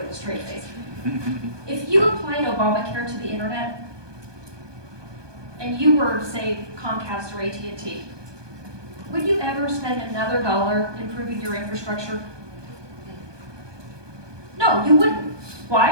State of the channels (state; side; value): late; left; 1.2 ms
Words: a straight face. If you applied Obamacare to the internet, and you were, say, Comcast or AT&T, would you ever spend another dollar improving your infrastructure? No, you wouldn't.